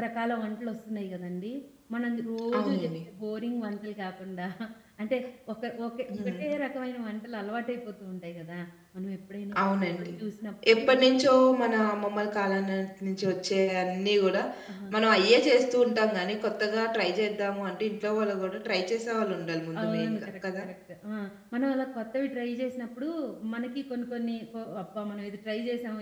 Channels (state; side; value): identical; both; correlation 1.00